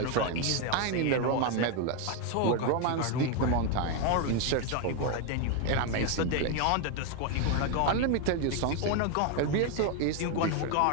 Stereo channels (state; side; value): different; both; correlation 0.02